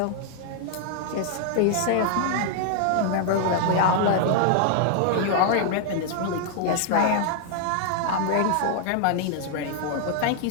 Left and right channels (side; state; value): both; different; correlation 0.00